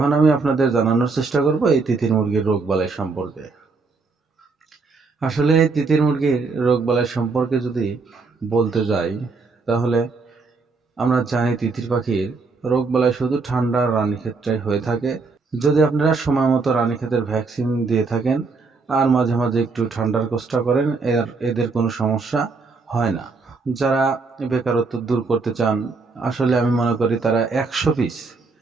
আমি আপনাদের জানানোর চেষ্টা করব এই তিতির মুরগির রোগবালাই সম্পর্কে। আসলে এই তিতির মুরগির রোগবালাই সম্পর্কে যদি বলতে যাই, তাহলে আমরা জানি তিতির পাখির রোগবালাই শুধু ঠান্ডা আর রানীক্ষেত্রে হয়ে থাকে। যদি আপনারা সময় মতো রানীক্ষেতের ভ্যাকসিন দিয়ে থাকেন আর মাঝে মাঝে একটু ঠান্ডার কষ্ট করেন, এদের কোনো সমস্যা হয় না। যারা বেকারত্ব দূর করতে চান, আসলে আমি মনে করি তারা 100 পিস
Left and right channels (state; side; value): quieter; left; 4.2 dB